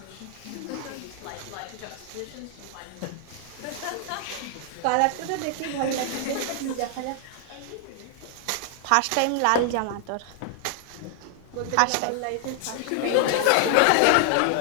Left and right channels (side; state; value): both; different; correlation 0.00